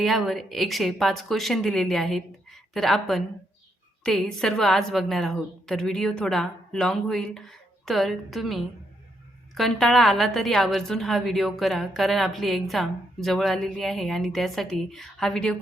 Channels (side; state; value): both; normal; correlation 0.78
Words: 105 क्वेश्चन दिलेले आहेत. तर आपण ते सर्व आज बघणार आहोत. तर व्हिडिओ थोडा लॉंग होईल, तर तुम्ही कंटाळा आला तरी आवर्जून हा व्हिडिओ करा, कारण आपली एक्झाम जवळ आलेली आहे आणि त्यासाठी हा व्हिडिओ